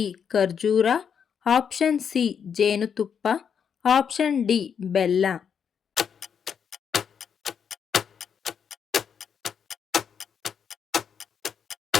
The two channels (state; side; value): quieter; right; 7.3 dB